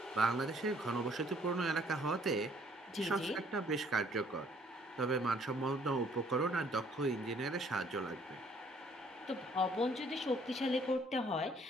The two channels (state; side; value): normal; both; correlation 0.62